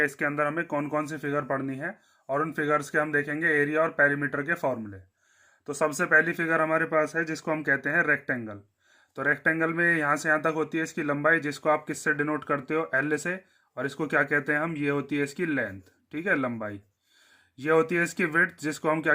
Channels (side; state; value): both; identical; correlation 1.00